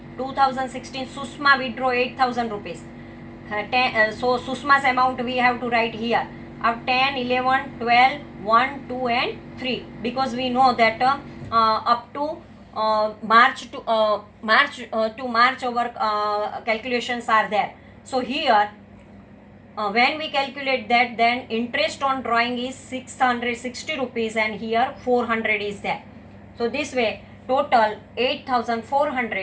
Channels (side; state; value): both; identical; correlation 1.00